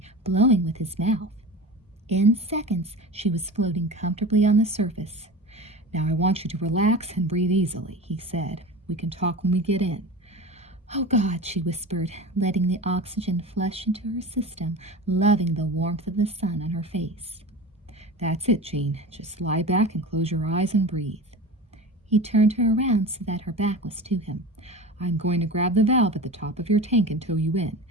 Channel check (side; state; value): both; normal; correlation 0.32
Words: blowing with his mouth. In seconds, she was floating comfortably on the surface. Now I want you to relax and breathe easily, he said. We can talk when we get in. Oh, God, she whispered, letting the oxygen flush into her system, loving the warmth of the sun on her face. That's it, Jean. Just lie back and close your eyes and breathe. He turned her around so that her back was to him. I'm going to grab the valve at the top of your tank and tow you in.